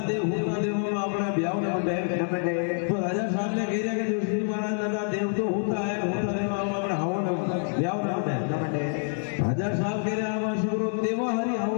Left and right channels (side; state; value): right; silent; 59 dB below the other